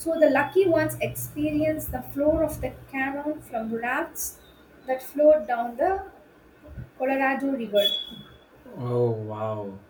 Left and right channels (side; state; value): both; identical; correlation 1.00